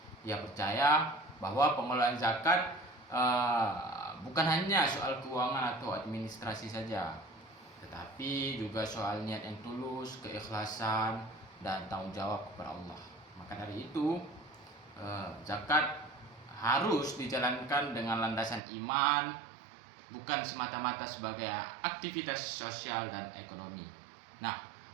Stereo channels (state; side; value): drops out; left; at 18.6 s